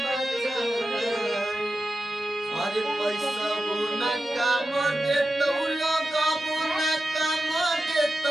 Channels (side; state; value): both; normal; correlation 0.92